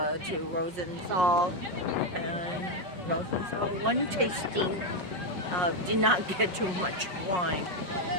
Rosenthal, and Rosenthal one tasting. Did not get too much wine,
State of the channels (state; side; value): late; left; 5.5 ms